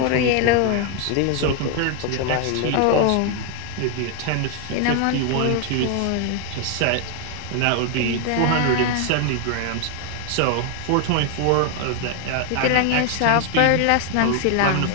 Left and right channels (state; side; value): different; both; correlation 0.01